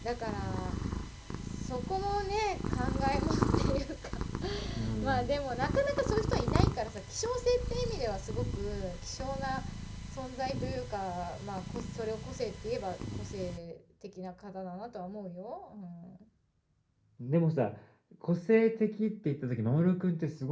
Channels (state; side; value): identical; both; correlation 1.00